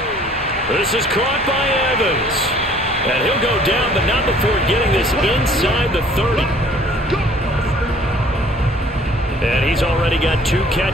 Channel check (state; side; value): normal; both; correlation 0.55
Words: This is caught by Evans. And he'll go down, but not before getting this inside the 30. And he's already got 2